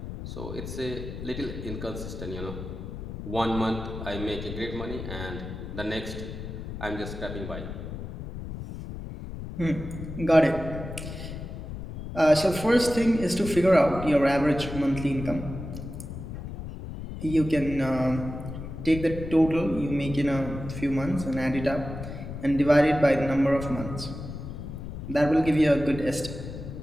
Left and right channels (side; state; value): left; noise; rumble, 9 dB below the sound